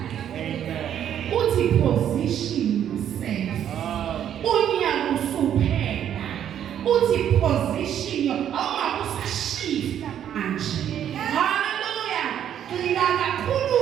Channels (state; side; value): quieter; left; 9.9 dB